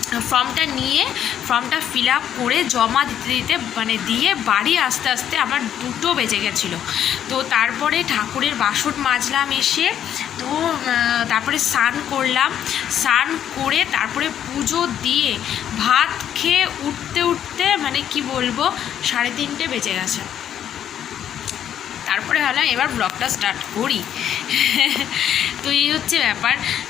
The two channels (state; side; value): quieter; right; 9.9 dB